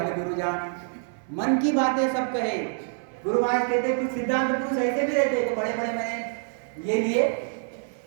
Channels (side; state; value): left; silent; 61 dB below the other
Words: गुरु जान। मन की बातें सब कहे। गुरु महाराज कहते कुछ सिद्धांत पुरुष ऐसे भी रहते, तो बड़े बड़े मैंने ये लिए